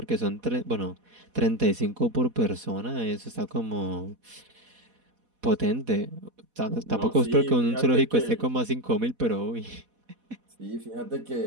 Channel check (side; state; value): left; late; 4.1 ms